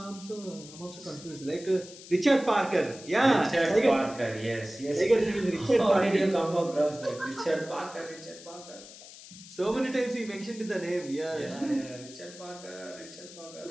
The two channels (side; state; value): left; noise; hiss, 17 dB below the sound